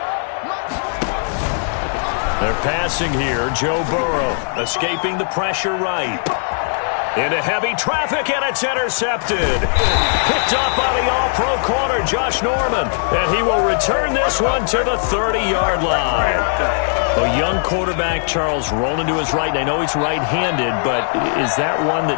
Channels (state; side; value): silent; right; digital silence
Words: They're passing here. Joe Burrow escaping the pressure right. Into heavy traffic, and it's intercepted. Picked up by the all-pro corner, Josh Norman. And he will return this one to the 30-yard line. A young quarterback, Charles, rolling to his right. And I know he's right-handed, but is that one